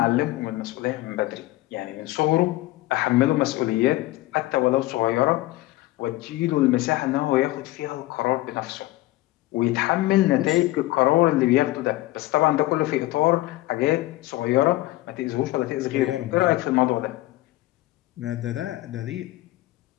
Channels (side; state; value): right; quieter; 17.9 dB